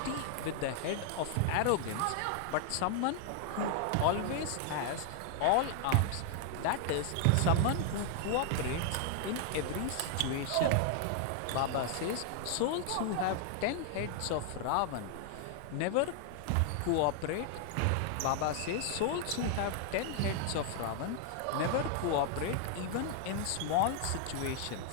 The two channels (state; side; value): different; both; correlation 0.00